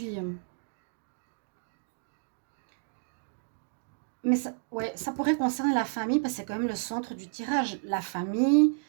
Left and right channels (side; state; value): left; silent; digital silence